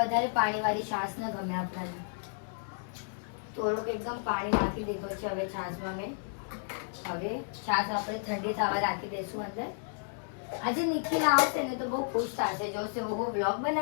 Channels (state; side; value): silent; right; digital silence